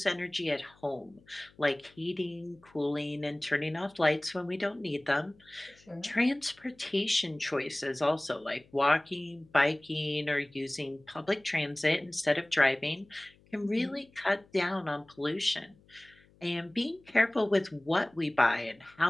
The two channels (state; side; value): noise; left; hum, 29 dB below the sound